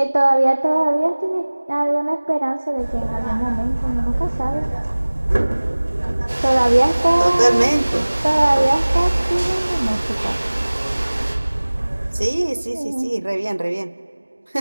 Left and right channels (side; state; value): both; inverted; correlation -1.00